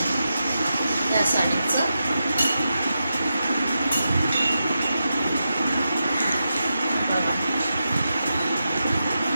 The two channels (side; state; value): both; inverted; correlation -0.89